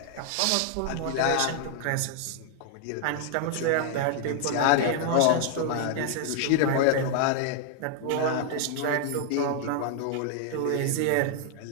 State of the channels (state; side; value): different; both; correlation 0.00